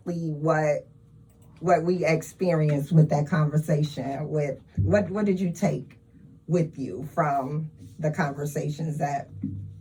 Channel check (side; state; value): both; identical; correlation 1.00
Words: what we experienced with that conversation. With what did you take with you from the conversations that